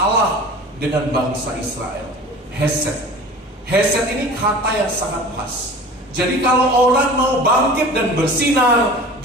dengan bangsa Israel. Hesed. Hesed ini kata yang sangat pas. Jadi kalau orang mau bangkit dan bersinar,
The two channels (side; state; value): both; normal; correlation 0.40